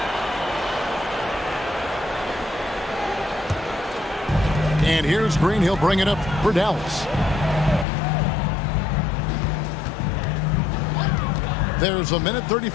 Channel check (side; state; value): right; drops out; at 7.9 s